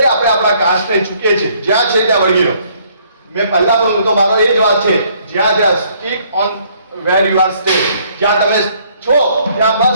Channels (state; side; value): inverted; both; correlation -0.64